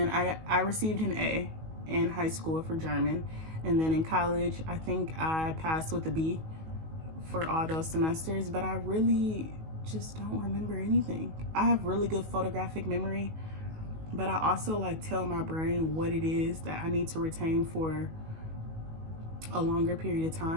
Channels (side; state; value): left; late; 19 ms